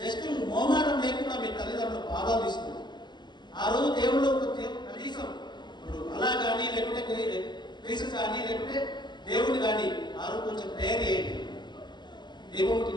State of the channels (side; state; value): right; late; 0.21 ms